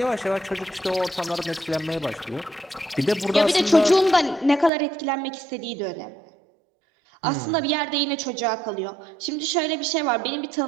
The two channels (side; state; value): left; drops out; at 4.7 s